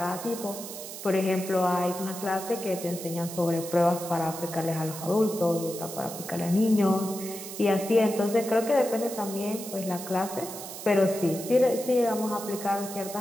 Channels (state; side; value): noise; right; hiss, 10 dB below the sound